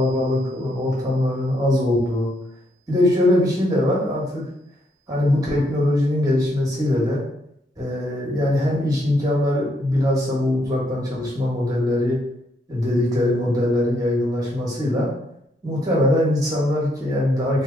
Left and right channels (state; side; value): normal; both; correlation 0.74